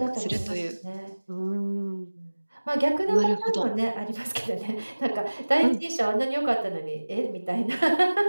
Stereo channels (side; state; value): both; inverted; correlation -1.00